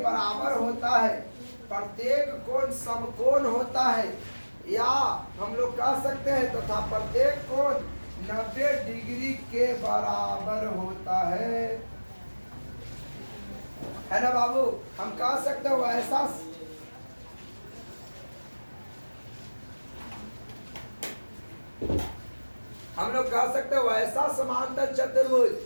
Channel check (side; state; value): both; inverted; correlation -1.00